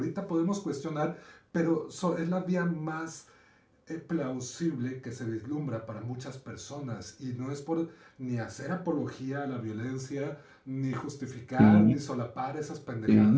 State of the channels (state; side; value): identical; both; correlation 1.00